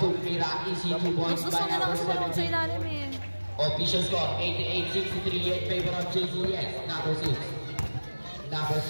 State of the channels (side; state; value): both; inverted; correlation -1.00